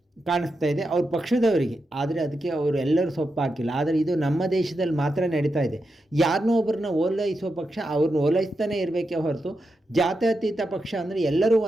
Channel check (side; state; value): both; normal; correlation 0.87